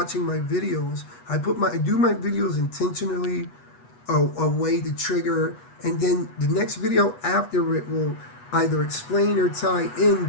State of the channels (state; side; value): late; right; 8.2 ms